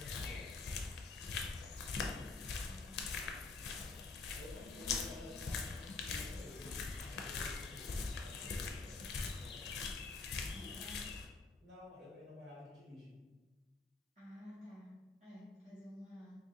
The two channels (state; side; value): quieter; right; 4.0 dB